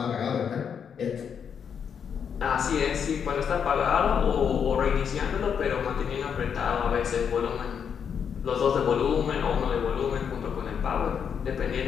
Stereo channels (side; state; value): right; quieter; 7.4 dB